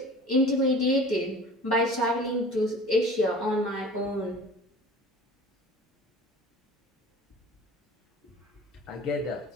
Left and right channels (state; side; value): normal; both; correlation 0.42